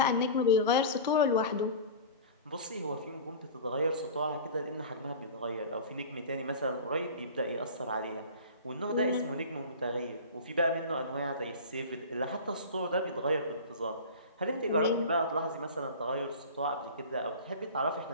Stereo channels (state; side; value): inverted; both; correlation -0.34